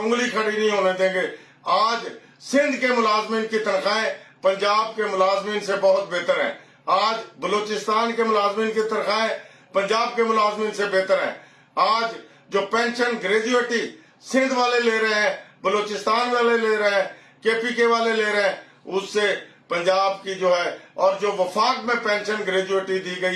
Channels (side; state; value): both; identical; correlation 1.00